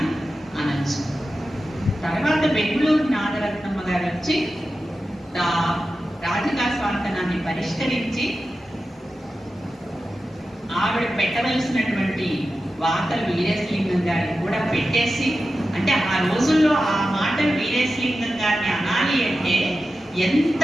అనొచ్చు. తర్వాత బెంగుళూరు నాగరత్నమ్మ గారు వచ్చి రాధికా స్వాంతనాన్ని పరిష్కరించి ఆవిడ పెట్టవలసినటువంటి వార్తలు వీరేశలింగం గారిని కూడా పెట్టేసి, అంటే ఆ రోజుల్లో ఆ మాటలు వీరేశలింగం గారిని అనాలి అంటే ఎంత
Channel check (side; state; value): both; normal; correlation 0.92